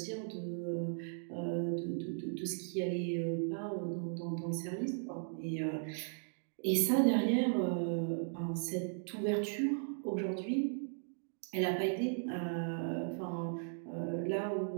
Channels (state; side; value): silent; left; digital silence